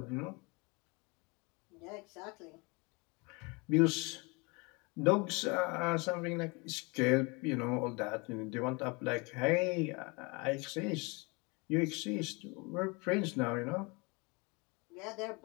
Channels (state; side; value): quieter; right; 28.3 dB